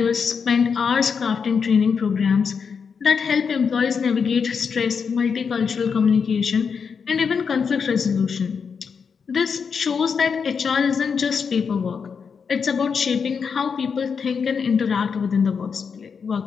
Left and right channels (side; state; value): right; quieter; 6.1 dB